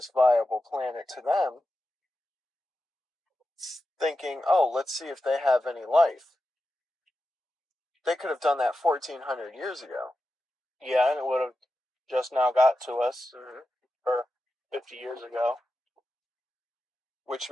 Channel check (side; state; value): both; normal; correlation 0.91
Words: viable planet to them, thinking, oh, let's see if they have any life. They could have done that 1,400 years ago. Yeah, and it would have just now got to us, or 50 years ago. Which